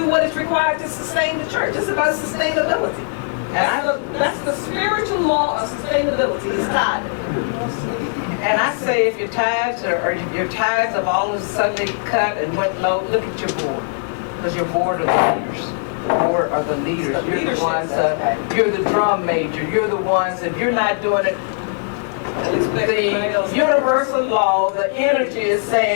what is required to sustain the church. It's about sustainability. That's the spiritual law of sustainability, is tithing. And I say if your tithes or your tithes have all of a sudden cut and went low, look at your board. Because your board are the leaders. The board are the leaders. You're the ones, you're the drum major. You're the ones, if you're not doing it, the universal law, the energy is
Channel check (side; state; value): right; silent; 60 dB below the other